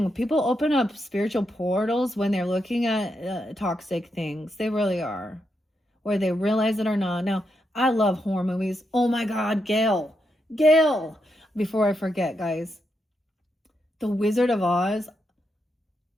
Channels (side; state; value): both; normal; correlation 0.82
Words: People open up spiritual portals when they're looking at toxic things. They really are, whether they realize it or not. Now, I love horror movies. Oh my God, Gail. Before I forget, guys, The Wizard of Oz